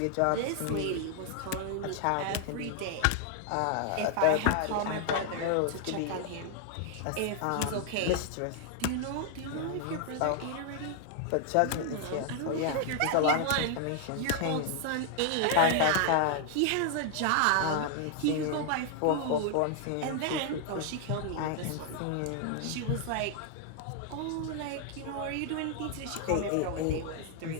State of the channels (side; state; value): both; different; correlation 0.00